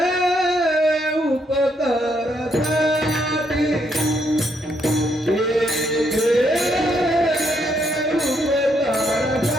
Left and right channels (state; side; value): normal; both; correlation 0.74